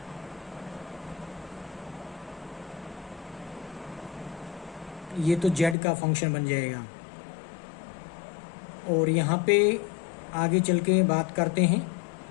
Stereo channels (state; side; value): drops out; right; at 5.8 s